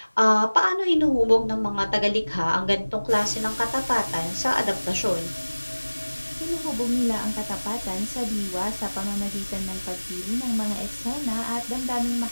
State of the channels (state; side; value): inverted; both; correlation -1.00